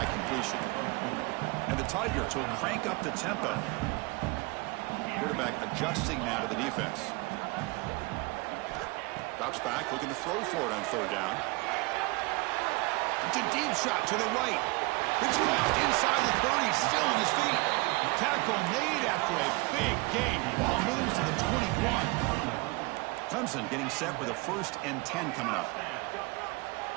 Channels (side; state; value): left; quieter; 25.1 dB